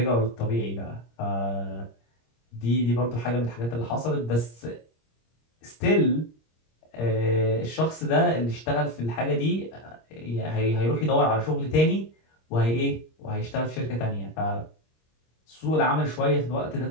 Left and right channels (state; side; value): late; right; 26 ms